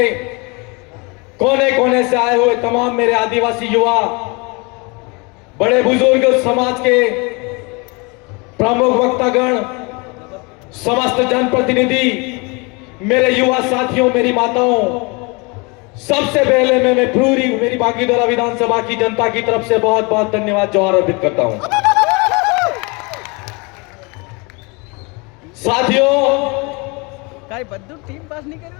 कोने कोने से आए हुए तमाम मेरे आदिवासी युवा, बड़े बुजुर्ग, समाज के प्रमुख वक्तागण, समस्त जनप्रतिनिधि, मेरे युवा साथियों, मेरी माताओं, सबसे पहले मैं पूरी मेरी बागीदोरा विधानसभा की जनता की तरफ से बहुत बहुत धन्यवाद जोहार अर्पित करता हूं। साथियों, टीम पास नहीं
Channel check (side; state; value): right; quieter; 29.2 dB